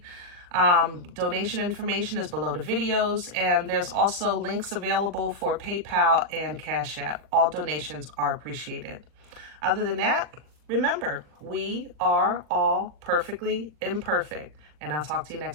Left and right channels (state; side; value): late; left; 40 ms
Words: donation information is below the videos, and there's also links available for PayPal and CashApp. All donations are appreciated. Other than that, remember, we are all perfectly imperfect, and I'll talk to you